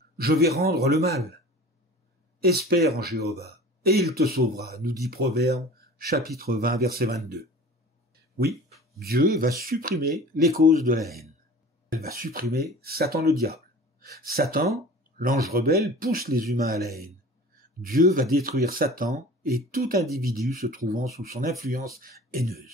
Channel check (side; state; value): both; normal; correlation 0.41